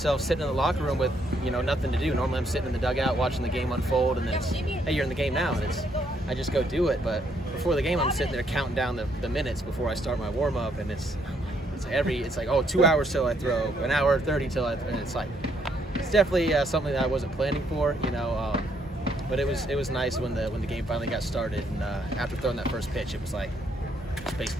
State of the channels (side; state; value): both; normal; correlation 0.72